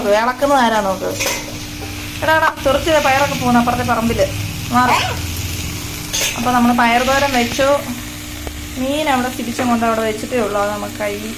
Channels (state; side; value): identical; both; correlation 1.00